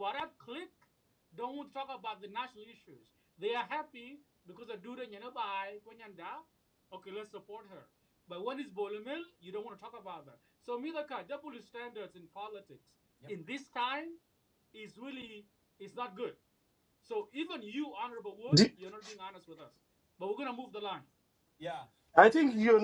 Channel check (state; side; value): identical; both; correlation 1.00